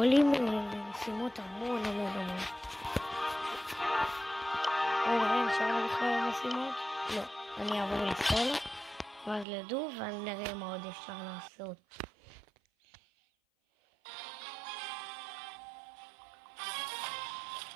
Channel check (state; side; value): drops out; left; at 9.5 s